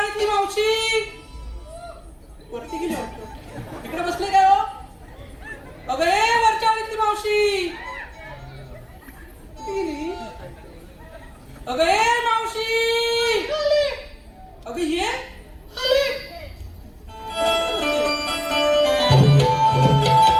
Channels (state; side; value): identical; both; correlation 1.00